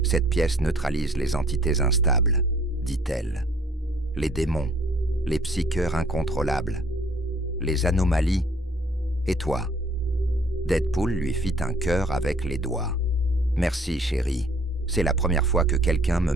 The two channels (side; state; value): both; normal; correlation 0.59